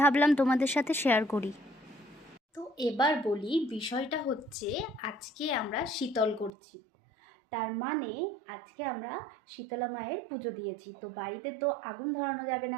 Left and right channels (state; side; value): drops out; left; at 6.5 s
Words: ভাবলাম তোমাদের সাথে শেয়ার করি। তো এবার বলি, বিষয়টা হচ্ছে আজকে আমরা শীতল করছি, তার মানে আজকে আমরা শীতলা মায়ের পুজো দিয়েছি। তো বাড়িতে তো আগুন ধরানো যাবে না,